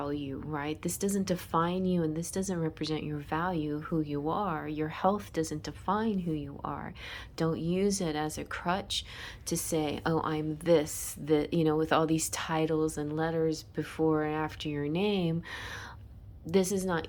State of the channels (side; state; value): both; identical; correlation 1.00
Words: right? This doesn't define you, and this doesn't represent your value, who you are. Your health doesn't define who you are. Don't use it as a crutch to say, oh, I'm this, that, you know, with all these titles and letters before and after your name. This is not